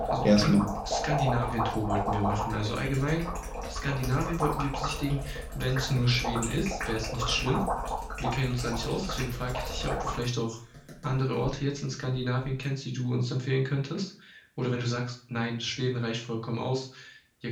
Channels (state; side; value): identical; both; correlation 1.00